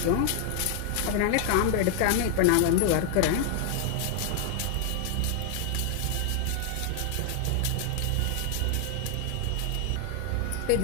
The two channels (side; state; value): both; different; correlation 0.00